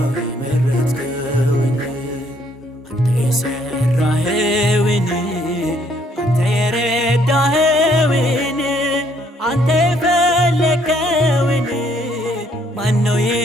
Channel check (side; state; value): both; normal; correlation 0.67